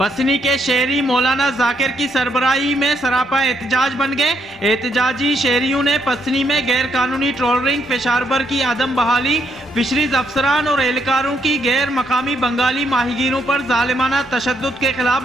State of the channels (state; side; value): normal; both; correlation 0.74